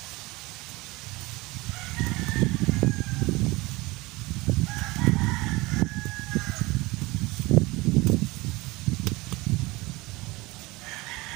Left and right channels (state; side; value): quieter; left; 22.2 dB